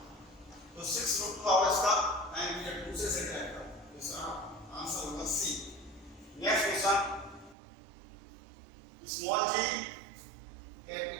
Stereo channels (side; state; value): left; drops out; at 7.6 s